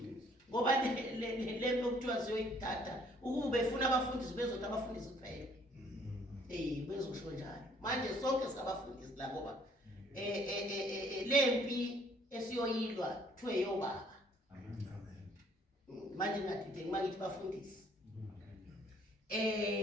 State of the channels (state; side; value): normal; both; correlation 0.62